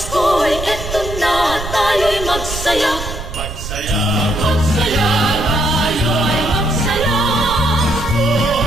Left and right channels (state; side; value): noise; right; rumble, 8 dB below the sound